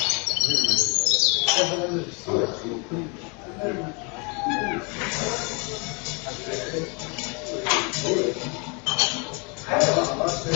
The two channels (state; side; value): quieter; right; 32.7 dB